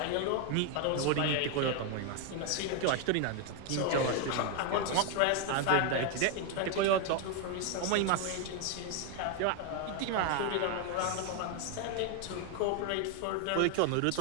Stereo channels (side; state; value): both; different; correlation 0.01